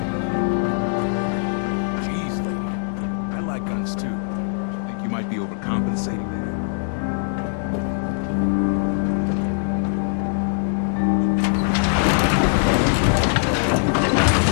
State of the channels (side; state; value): right; silent; digital silence